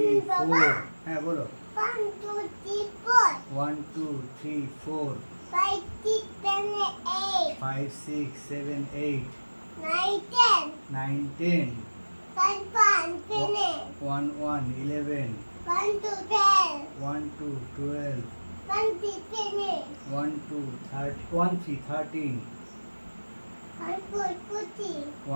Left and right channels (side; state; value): both; inverted; correlation -1.00